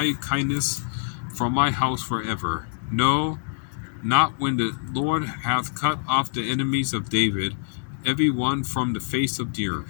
kindness from my house forever. No, not when the Lord hath cut off the enemies of David, every one from the face of the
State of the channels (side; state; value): right; silent; digital silence